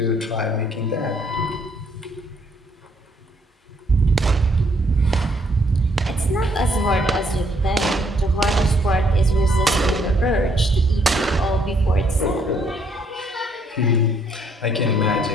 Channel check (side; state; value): both; normal; correlation 0.68